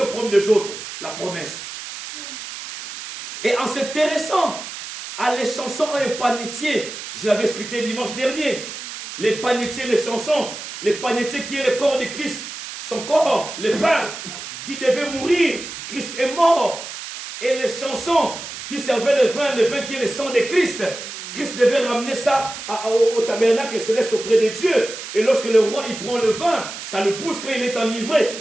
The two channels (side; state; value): right; noise; hiss, 10 dB below the sound